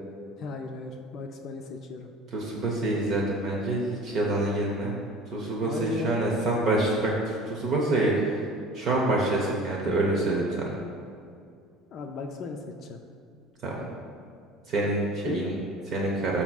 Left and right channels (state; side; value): normal; both; correlation 0.43